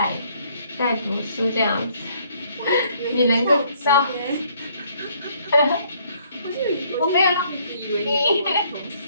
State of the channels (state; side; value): inverted; both; correlation -0.65